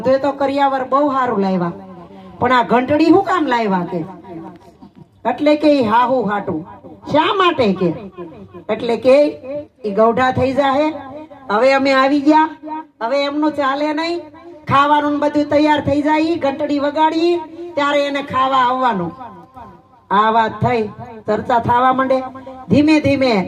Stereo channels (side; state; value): both; identical; correlation 1.00